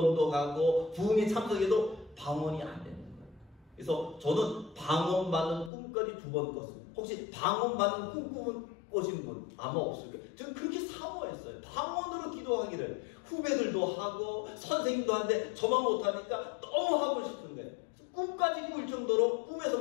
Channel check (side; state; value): right; drops out; at 5.7 s